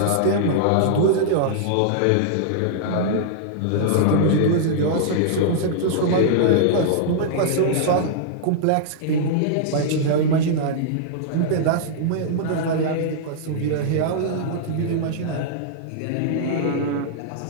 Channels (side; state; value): both; different; correlation -0.01